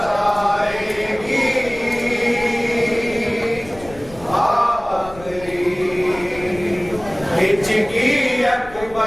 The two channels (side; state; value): left; noise; rumble, 18 dB below the sound